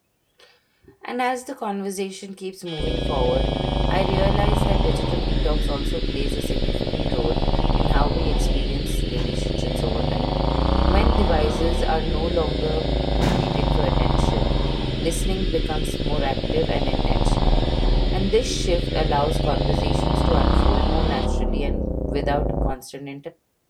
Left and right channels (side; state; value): both; identical; correlation 1.00